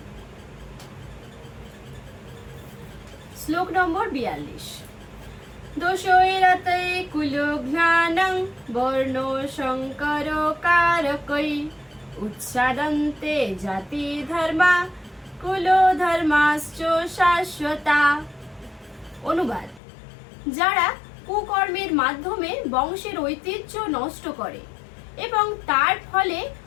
শ্লোক নম্বর 42। দোষৈরতে কুলঘ্নানং বর্ণ শঙ্কর কারকৈ উৎসাদন্তে জাতি ধর্মা কুল ধর্মাশ্চ শাশ্বতা। অনুবাদ: যারা কুকর্মের মাধ্যমে বংশের ঐতিহ্য নষ্ট করে এবং তার ফলে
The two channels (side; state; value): right; drops out; at 19.8 s